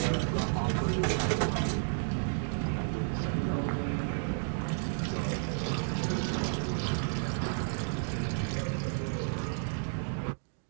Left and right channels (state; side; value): silent; left; digital silence